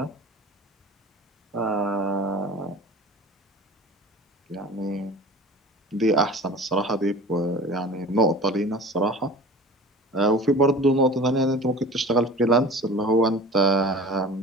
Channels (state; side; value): normal; both; correlation 0.40